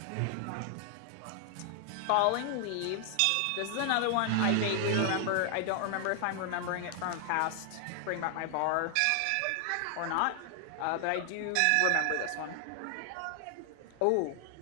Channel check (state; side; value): different; both; correlation 0.00